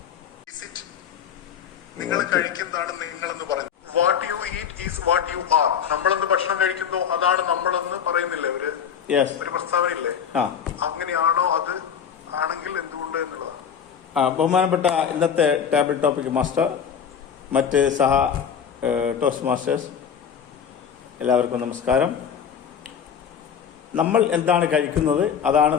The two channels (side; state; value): right; quieter; 7.7 dB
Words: നിങ്ങൾ കഴിക്കുന്നതാണ് നിങ്ങളെന്ന് പറഞ്ഞു. What you eat is what you are. നമ്മളെന്ന് ഭക്ഷണം കഴിക്കുന്നോ അതാണ് നമ്മളെന്ന് പറയുന്നില്ലേ ഒരു പ്രസ്താവനയില്ലേ? അങ്ങനെയാണോ? അത് ആണെങ്കിൽ എന്തുകൊണ്ട് എന്നുള്ളതാണ്. ബഹുമാനപ്പെട്ട ഇന്നത്തെ ടേബിൾ ടോപ്പിക് മാസ്റ്റർ, മറ്റ് സഹ ടോസ്റ്റ് മാസ്റ്റേഴ്സ്, എല്ലാവർക്കും നമസ്കാരം. നമ്മൾ എന്താണ് കഴിക്കുന്നത് അതാണ്